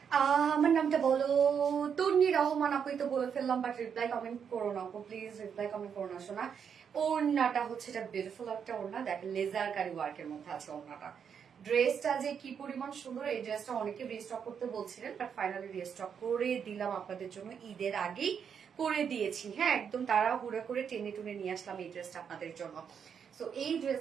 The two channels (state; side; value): quieter; left; 7.3 dB